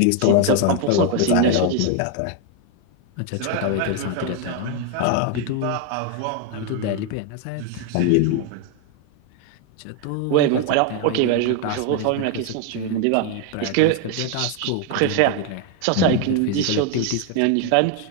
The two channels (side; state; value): both; different; correlation 0.01